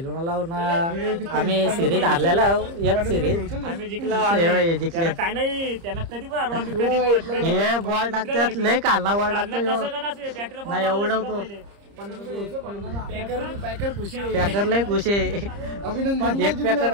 आम्ही सिरीज हारलेला एक सिरीज आम्ही जिंकला जिंकले काय नाही त्यांना कधी पण हरवा आम्ही कधी पण हे बॉल टाकतात लय कालना बॉल टाकतो नाही एवढं पॅकर खुशी पॅकर लय खुश आहे अभिनंदन एक पॅकर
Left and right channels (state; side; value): late; left; 30 ms